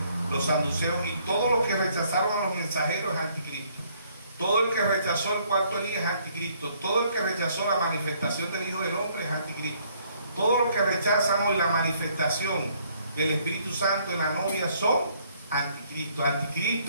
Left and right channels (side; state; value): both; inverted; correlation -0.65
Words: los saduceos, y todos los que rechazaron a los mensajeros es anticristo. Todo el que rechazó el cuarto Elías es anticristo. Todo el que rechazó la manifestación del Hijo del Hombre es anticristo. Todos los que rechazan hoy la manifestación del Espíritu Santo en la novia son anticristo.